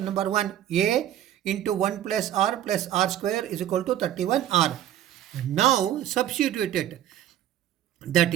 number 1. A into 1 plus R square is equal to 31R. Now substitute it. That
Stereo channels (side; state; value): left; quieter; 11.8 dB